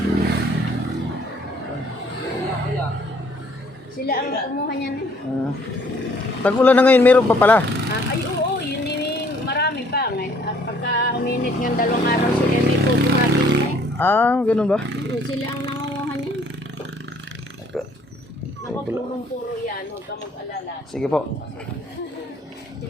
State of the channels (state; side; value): normal; both; correlation 0.61